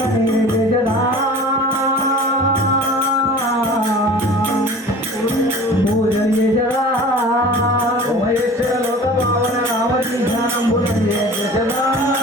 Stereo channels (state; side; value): normal; both; correlation 0.42